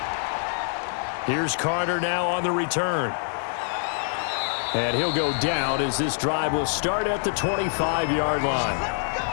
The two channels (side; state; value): right; silent; digital silence